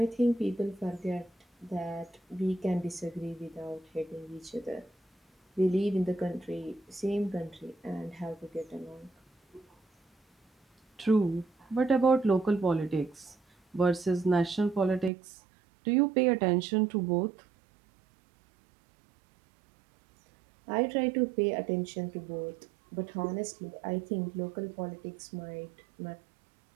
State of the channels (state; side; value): drops out; left; at 15.1 s